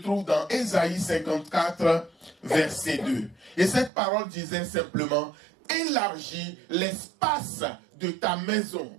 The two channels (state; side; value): drops out; left; at 3.9 s